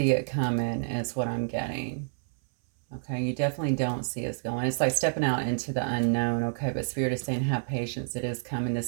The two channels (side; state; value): left; silent; 59 dB below the other